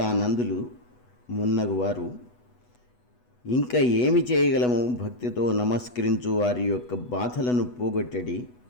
మున్నగువారు ఇంకా ఏమి చేయగలము, భక్తితో నమస్కరించు వారి యొక్క బాధలను పోగొట్టడి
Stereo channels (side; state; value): right; late; 8.1 ms